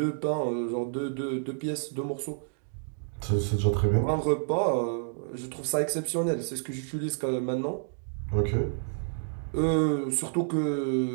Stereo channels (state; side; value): silent; left; digital silence